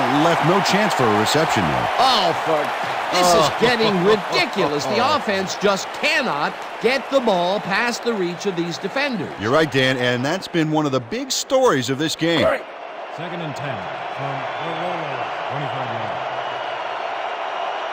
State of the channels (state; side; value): identical; both; correlation 1.00